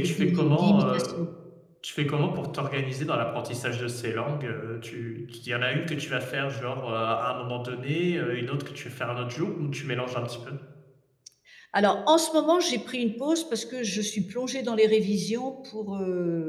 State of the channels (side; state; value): both; identical; correlation 1.00